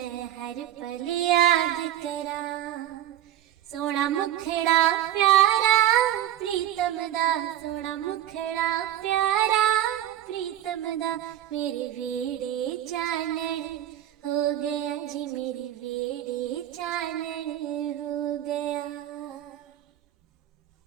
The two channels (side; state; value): left; quieter; 12.0 dB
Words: हर पल याद करा। सोना मुखड़ा प्यारा प्रीतम दा, सोना मुखड़ा प्यारा प्रीतम दा, मेरे बेड़े चानन हो गया जी, मेरे बेड़े चानन हो गया।